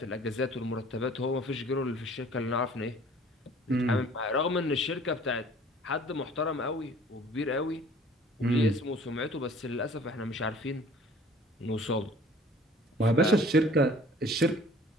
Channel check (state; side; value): normal; both; correlation 0.51